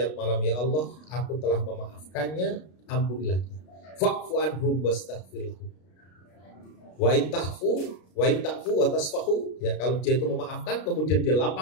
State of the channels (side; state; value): right; late; 33 ms